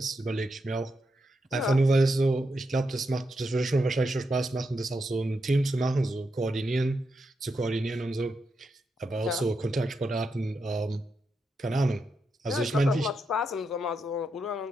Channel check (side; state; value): both; normal; correlation 0.84